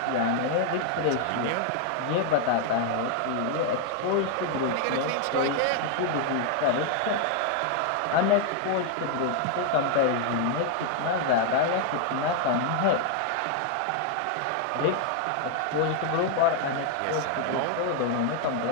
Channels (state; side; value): different; both; correlation 0.00